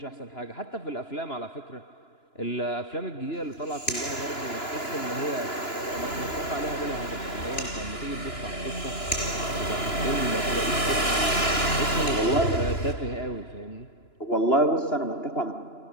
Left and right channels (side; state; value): right; late; 2.9 ms